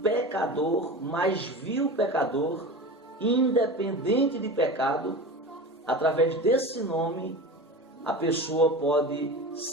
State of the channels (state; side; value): normal; both; correlation 0.31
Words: pecador, mais vil pecador, independente de pecado. Através desse nome a pessoa pode